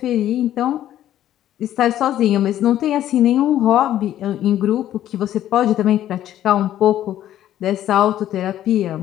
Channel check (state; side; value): quieter; right; 12.1 dB